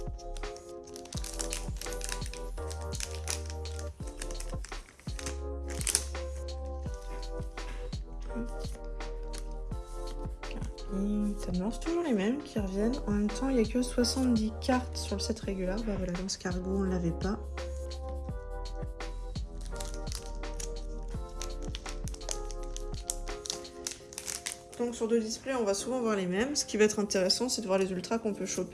C'est toujours les mêmes qui reviennent. En même temps, il n'y a que 70 cartes sur le set régulier. Bah voilà, dans ce cargo, on ne l'avait pas. Donc sur 2 displays, on va souvent voir les mêmes. Ce qui va être intéressant, c'est de voir les ultras qu'on peut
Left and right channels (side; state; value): both; identical; correlation 1.00